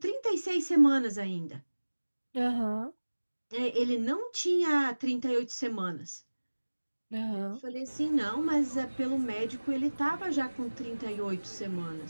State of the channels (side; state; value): both; inverted; correlation -1.00